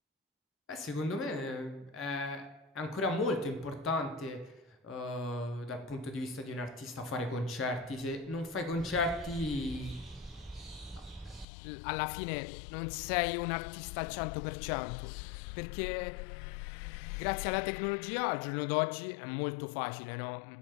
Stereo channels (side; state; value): right; drops out; at 11.5 s